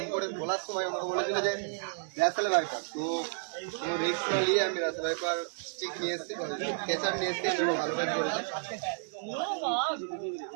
করে বলার সময় আমাকে বলেছিল যে রাসেল ভাইপার, তো কোনো রিস্ক না নিয়ে আমি রাসেল ভাইপার স্টিক নিয়ে এসেছি, ক্যাচার নিয়ে এসেছি। ভালো কাজ করেছি।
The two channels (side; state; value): left; silent; digital silence